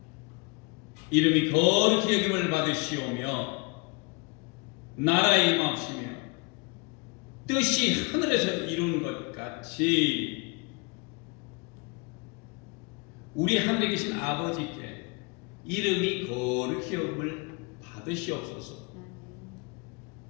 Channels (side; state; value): right; quieter; 29.7 dB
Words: 이름이 거룩히 여김을 받으시오며 나라의 임하시며 뜻이 하늘에서 이룬 것 같이 우리 하늘에 계신 아버지께 이름이 거룩히 여김을 받으시옵소서.